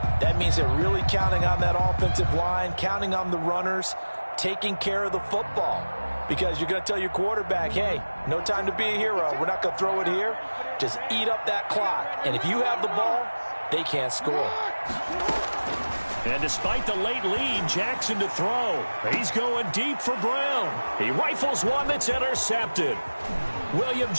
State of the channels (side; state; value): both; inverted; correlation -1.00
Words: That means they're really counting on that offensive line, counting on the runners, taking care of the football. Because you're going to tell your quarterback, hey, no time to be a hero. We're not going to throw it here. Just eat up that clock. And if you have the ball, they can't score. And despite the late lead, Jackson to throw. He's going deep for Brown. He rifles one that's intercepted. William